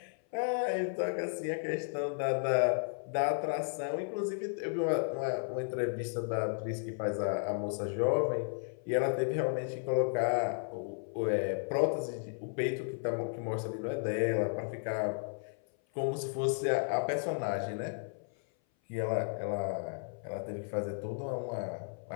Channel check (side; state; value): right; silent; 55 dB below the other